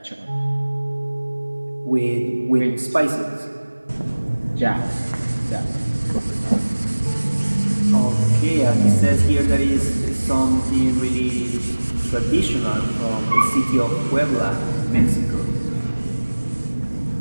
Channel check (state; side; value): inverted; both; correlation -1.00